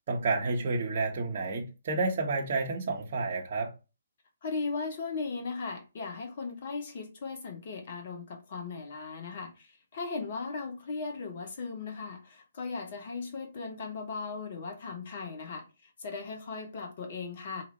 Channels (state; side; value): inverted; both; correlation -0.65